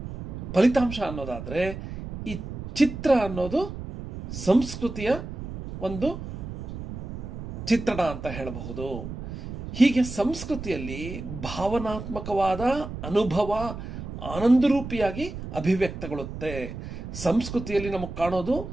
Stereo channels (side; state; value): right; noise; rumble, 9 dB below the sound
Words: ಫಲಿತಾಂಶ ಅನ್ನೋದಾದರೆ, ಈ ಚಿತ್ರ ಅನ್ನೋದು ಸಂಸ್ಕೃತಿಯ ಒಂದು ಚಿತ್ರಣ ಅಂತ ಹೇಳಬಹುದು. ಹೀಗೆ ಸಂಸ್ಕೃತಿಯಲ್ಲಿ ಭಾವನಾತ್ಮಕವಾದ ಅನುಭವ ಆನಂದರೂಪಿಯಾಗಿ ಅಭಿವ್ಯಕ್ತಗೊಳ್ಳುತ್ತೆ. ಸಂಸ್ಕೃತಿಯಲ್ಲಿ ನಮಗೆ ಕಾಣೋದು